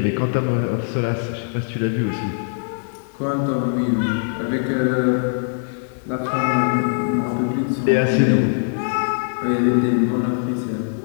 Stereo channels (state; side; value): silent; right; digital silence